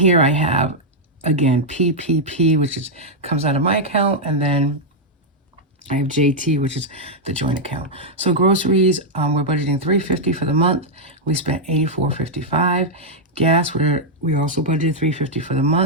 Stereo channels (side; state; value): both; normal; correlation -0.03